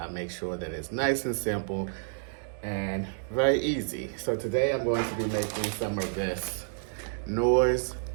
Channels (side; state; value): left; silent; digital silence